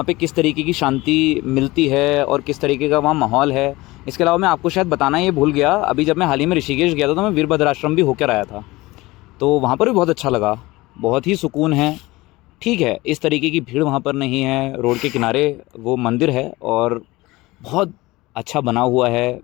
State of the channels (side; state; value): right; quieter; 20.4 dB